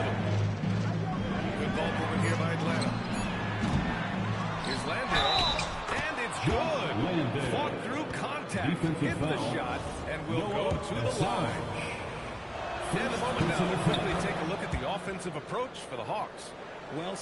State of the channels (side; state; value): both; identical; correlation 1.00